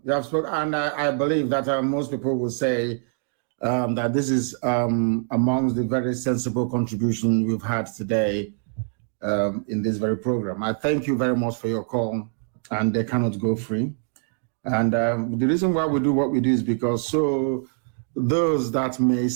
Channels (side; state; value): left; silent; digital silence